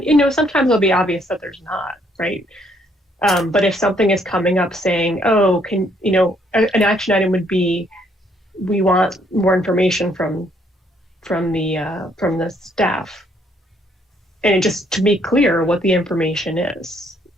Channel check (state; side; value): normal; both; correlation 0.68